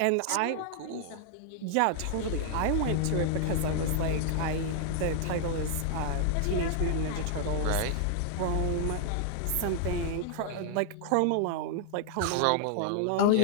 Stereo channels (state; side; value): different; both; correlation 0.00